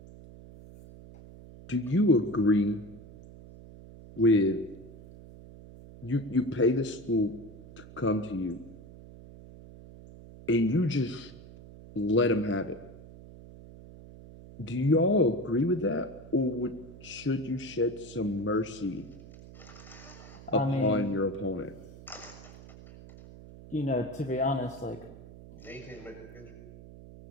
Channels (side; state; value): right; noise; hum, 18 dB below the sound